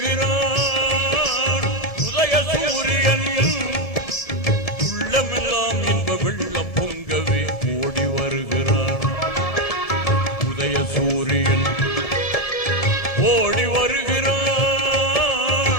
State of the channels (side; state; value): right; late; 1.8 ms